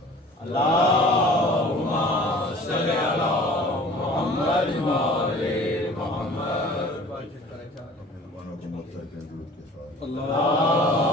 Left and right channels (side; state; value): both; normal; correlation 0.46